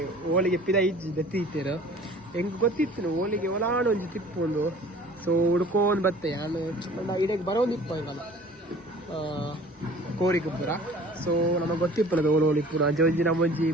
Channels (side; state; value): both; normal; correlation 0.48